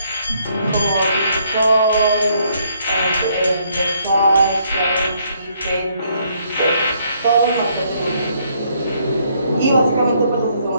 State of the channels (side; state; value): both; inverted; correlation -0.69